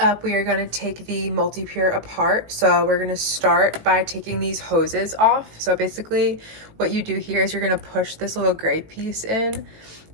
we are going to take the Multipure apart. So we're going to start by taking these hoses off. So basically what you do here is you're going to push this little gray piece in,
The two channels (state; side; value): late; left; 18 ms